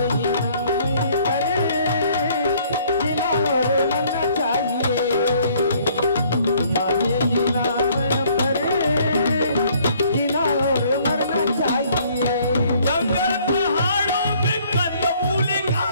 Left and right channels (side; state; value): both; inverted; correlation -0.61